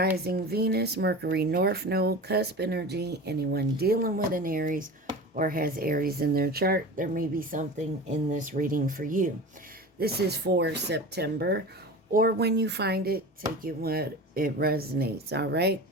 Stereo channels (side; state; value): both; normal; correlation 0.33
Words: Venus, Mercury, North Node, Cusp energy. Anyone dealing with an Aries or has Aries in their chart, there may be something in this reading for you. This is for September, or when you find it, take it when it resonates, all right?